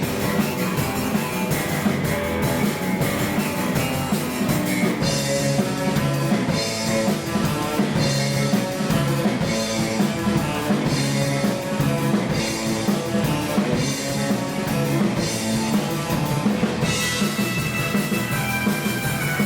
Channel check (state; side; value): identical; both; correlation 1.00